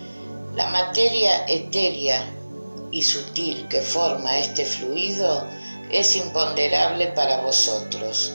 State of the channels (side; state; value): both; inverted; correlation -1.00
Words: La materia etérea y sutil que forma este fluido es imponderable para vosotros,